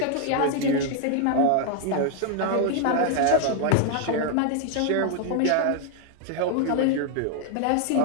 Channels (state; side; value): different; both; correlation 0.00